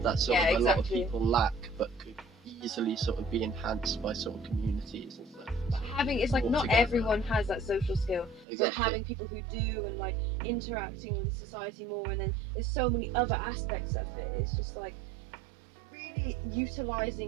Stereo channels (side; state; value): left; drops out; at 8.5 s